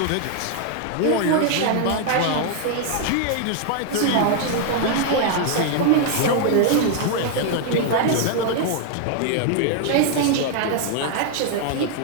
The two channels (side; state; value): both; different; correlation 0.00